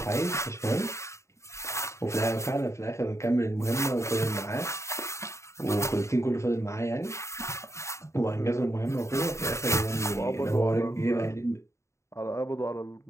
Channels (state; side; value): late; right; 0.14 ms